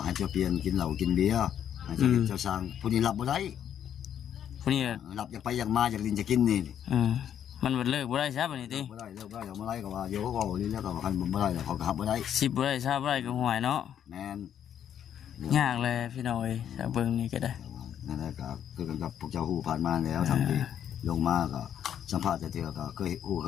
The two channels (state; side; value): quieter; right; 9.6 dB